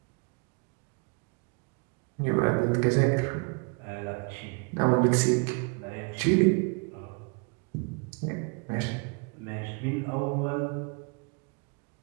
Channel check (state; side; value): quieter; left; 34.6 dB